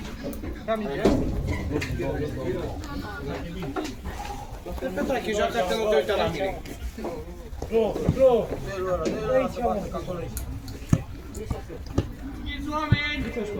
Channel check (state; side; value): identical; both; correlation 1.00